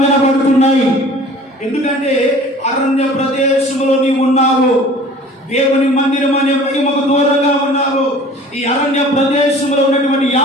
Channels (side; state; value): both; normal; correlation 0.46